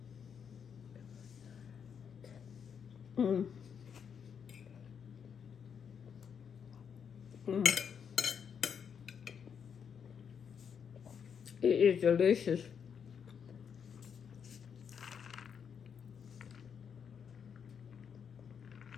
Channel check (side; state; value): right; quieter; 7.3 dB